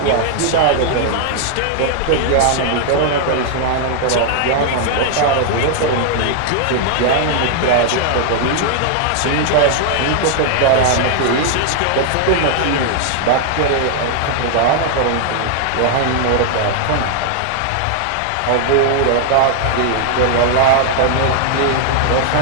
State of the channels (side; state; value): both; different; correlation 0.00